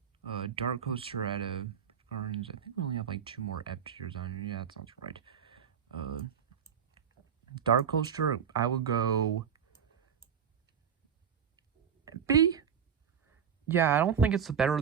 Dark Coaster at Gardens. I think we only have like 2 more F tiers on here. Yeah, that sounds right. Dark Coaster, I would go B. Yeah, I don't think it's the better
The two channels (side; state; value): left; quieter; 7.7 dB